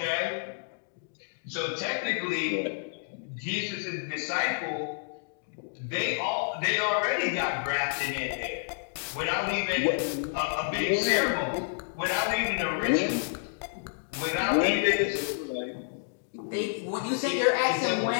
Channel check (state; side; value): silent; right; digital silence